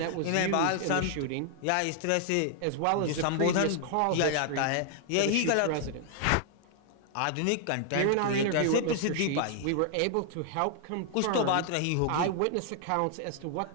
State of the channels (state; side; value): different; both; correlation -0.01